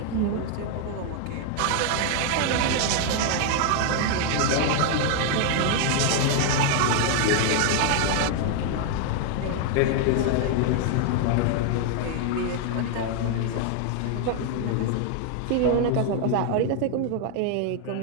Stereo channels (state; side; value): different; both; correlation 0.00